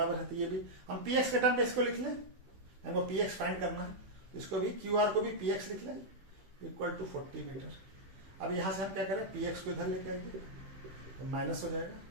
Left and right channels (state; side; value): late; left; 15 ms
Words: है, तो ये भी हम px के टर्म पे इसको लिख लें, हमको px फाइंड करना है, इसको भी qr को भी px लिख लें इक्वल टू 40 मीटर। अब यहां से हम क्या करें, px को इधर लेके आएंगे तो माइनस हो जाएगा